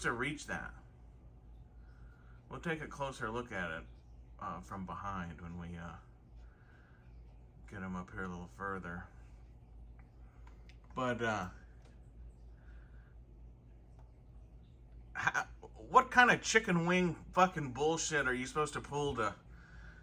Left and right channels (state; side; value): identical; both; correlation 1.00